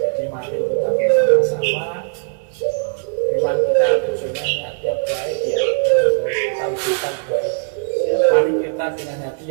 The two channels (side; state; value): left; silent; digital silence